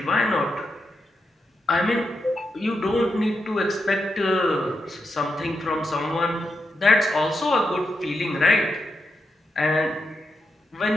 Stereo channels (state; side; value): normal; both; correlation 0.84